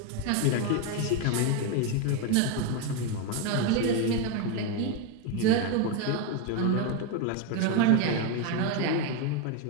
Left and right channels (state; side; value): different; both; correlation 0.02